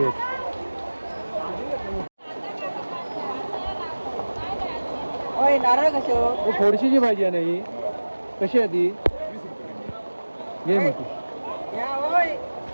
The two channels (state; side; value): inverted; both; correlation -1.00